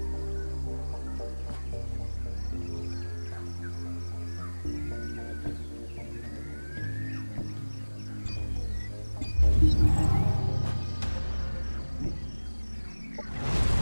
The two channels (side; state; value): both; inverted; correlation -1.00